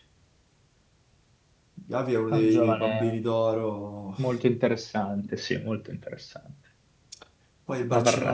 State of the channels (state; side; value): identical; both; correlation 1.00